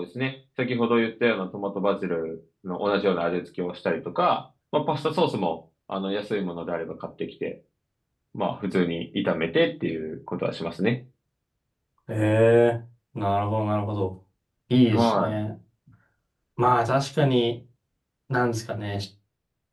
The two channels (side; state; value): both; identical; correlation 1.00